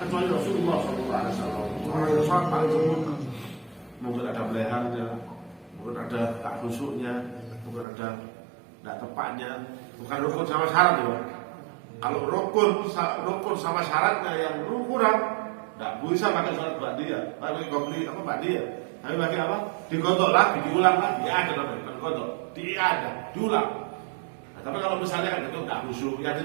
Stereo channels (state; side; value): drops out; left; at 7.9 s